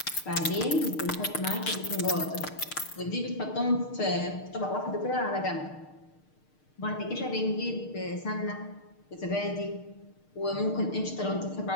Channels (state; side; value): late; right; 6.5 ms